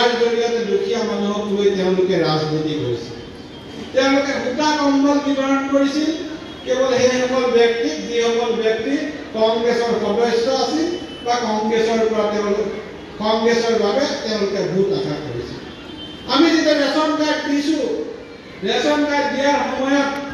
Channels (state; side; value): identical; both; correlation 1.00